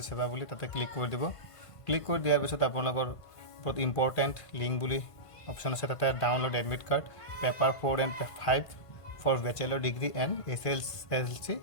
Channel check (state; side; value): late; right; 1.5 ms